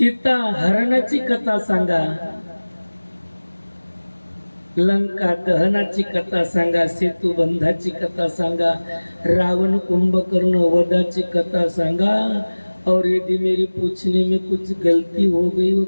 हरणाची कथा सांगा, लंका दहनाची कथा सांगा, सेतू बंधाची कथा सांगा, रावण कुंभकर्ण वधाची कथा सांगा, और यदि मेरी पूछने में कुछ गलती हो गई हो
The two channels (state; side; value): inverted; both; correlation -1.00